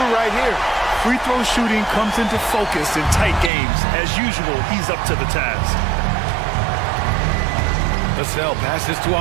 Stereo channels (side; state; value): left; drops out; at 3.5 s